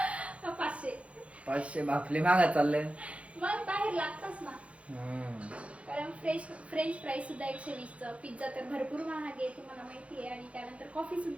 500 बापले मागा चालले. मग बाहेर लागतच ना, कारण फ्रेंच फ्राईज सुद्धा 120चं, पिझ्झा तर भरपूर महाग आहे तुम्हाला माहिती आहे, आणि त्यानंतर कॉफी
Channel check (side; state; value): left; late; 0.063 ms